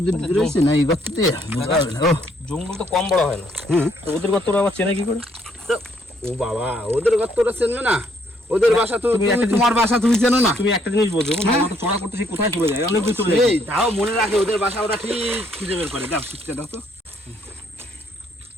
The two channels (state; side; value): normal; both; correlation 0.68